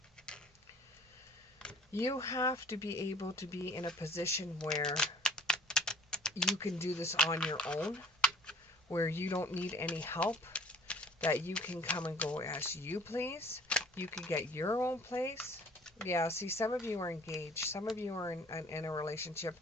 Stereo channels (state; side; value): normal; both; correlation 0.53